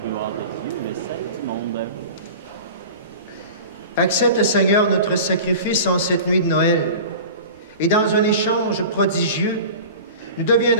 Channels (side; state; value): both; inverted; correlation -0.36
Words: de Dieu, le salut du monde. Accepte, Seigneur, notre sacrifice en cette nuit de Noël. Et dans un échange prodigieux, nous